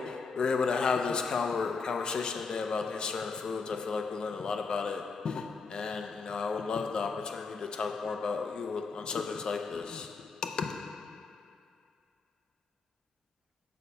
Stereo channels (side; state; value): right; quieter; 4.7 dB